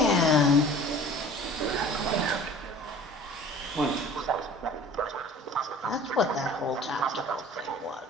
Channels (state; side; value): normal; both; correlation 0.45